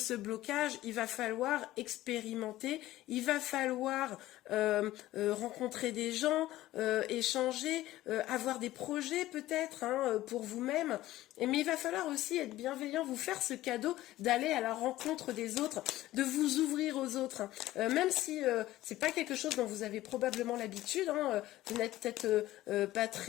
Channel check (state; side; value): quieter; right; 15.7 dB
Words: blocage, il va falloir expérimenter, il va falloir rencontrer des gens, échanger, avoir des projets peut-être hein, pour vous-même. Mais il va falloir aussi être bienveillant, vous faire ce cadeau d'aller à la rencontre des autres, de vous ouvrir aux autres. Hein. Même si c'est pas quelque chose dont vous avez probablement l'habitude, hein, vous n'êtes peut-être pas